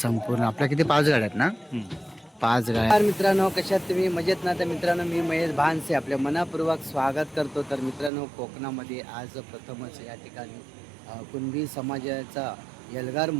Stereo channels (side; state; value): left; drops out; at 8.1 s